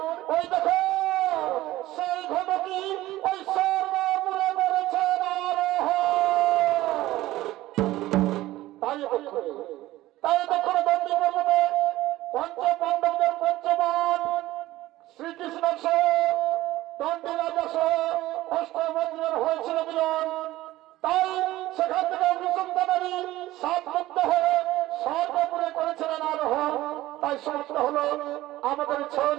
ওই দেখো সেই ঘটকি ওই সর্বমূলে মরেছে। তাই দেখো দণ্ডী পর্বতে পঞ্চপাণ্ডবদের পঞ্চমান শ্রীকৃষ্ণ দণ্ডী রাজা অষ্টমন্ত্র দুজন হয়েছিল দুজন, তাই সেখান থেকে অনুসন্ধানী সাত মুক্ত হয়ে সর্বপুরে করেছিলেন আরোহণ। তাই সমাপ্ত হলো আমাদের ছয়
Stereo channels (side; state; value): left; quieter; 16.3 dB